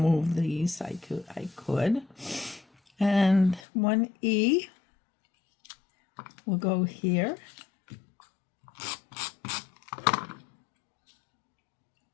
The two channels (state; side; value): drops out; right; at 3.6 s